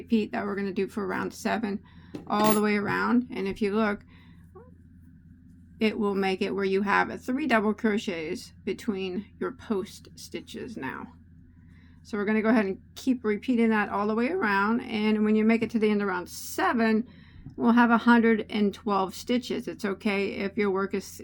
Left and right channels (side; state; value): both; identical; correlation 1.00